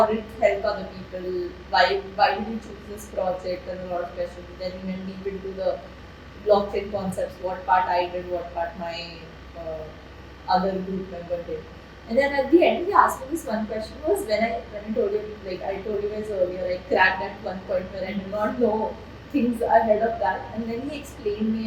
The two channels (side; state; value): both; identical; correlation 1.00